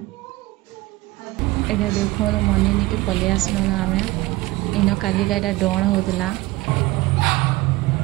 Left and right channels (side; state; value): left; quieter; 19.3 dB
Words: एडा देखो मनी नहीं के पलि आसलो ना आमे इन कालिका एडा डण होतला